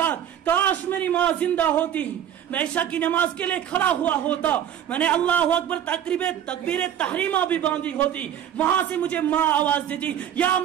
کاش میری ماں زندہ ہوتی، میں عشاء کی نماز کے لیے کھڑا ہوا ہوتا، میں نے اللہ اکبر تکبیر تحریمہ بھی باندھی ہوتی، وہاں سے مجھے ماں آواز دیتی یا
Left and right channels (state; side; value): quieter; left; 10.0 dB